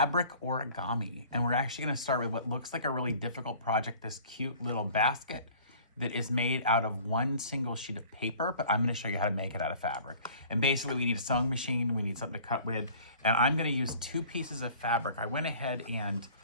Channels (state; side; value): inverted; both; correlation -0.48